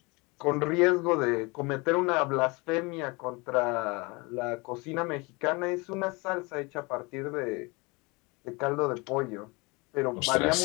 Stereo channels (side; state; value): right; quieter; 26.7 dB